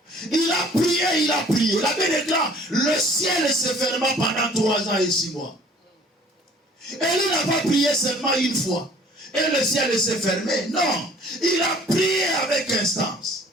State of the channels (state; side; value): normal; both; correlation 0.53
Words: Il a prié, il a prié. La Bible déclare, le ciel se ferma pendant 3 ans et 6 mois. Et il n'a pas prié seulement une fois. Et le ciel s'est fermé. Non, il a prié avec instance.